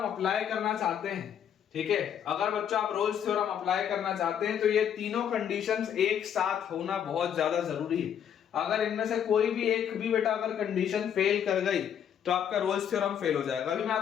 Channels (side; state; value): right; quieter; 8.9 dB